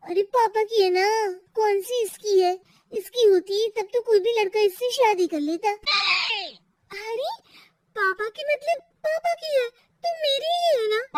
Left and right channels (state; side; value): identical; both; correlation 1.00